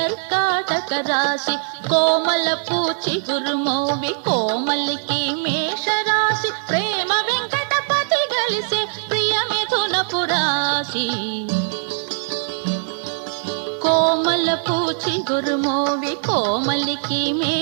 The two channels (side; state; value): left; silent; digital silence